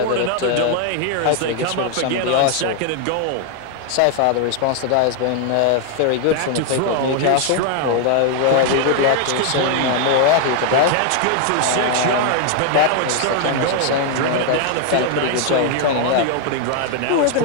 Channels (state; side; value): different; both; correlation 0.00